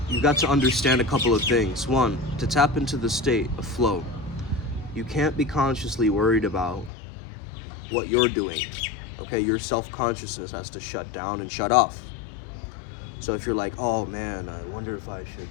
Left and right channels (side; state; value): right; drops out; at 6.9 s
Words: you've got to understand a couple of things. One, to tap into the state of flow, you can't be consciously worried about what you're doing, okay? Your self-consciousness has to shut down and shut off. So if you're like, oh man, I wonder if I should